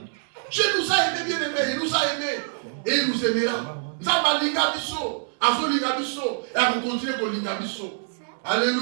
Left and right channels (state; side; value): silent; left; 60 dB below the other